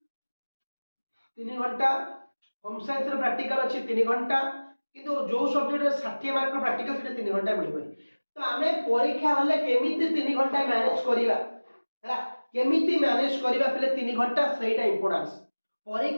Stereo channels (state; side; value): inverted; both; correlation -1.00